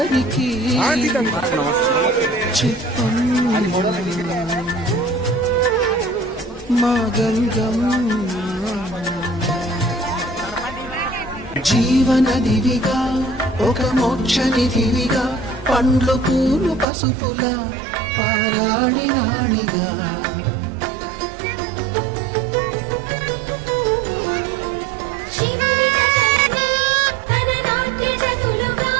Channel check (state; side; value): drops out; left; at 16.9 s